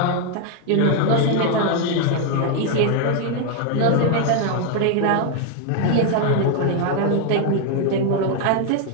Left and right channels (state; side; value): different; both; correlation 0.00